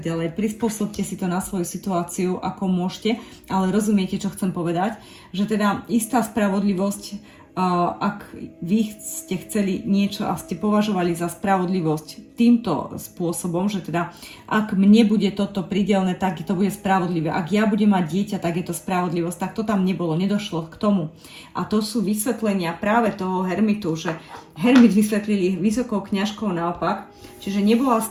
ďalej. Prispôsobte si to na svoju situáciu, ako môžete, ale rozumiete, čo chcem povedať, že teda istá spravodlivosť, ak vy ste chceli niečo a ste považovali za spravodlivosť týmto spôsobom, že teda ak mne bude toto pridelné, tak to bude spravodlivé. Ak ja budem mať dieťa, tak je to spravodlivosť. Tak to tam nebolo, nedošlo k tomu. A to sú vysvetlenia práve toho hermitu, že hermit vysvetlili vysokou kňažkou naopak, čiže nebola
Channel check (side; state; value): both; identical; correlation 1.00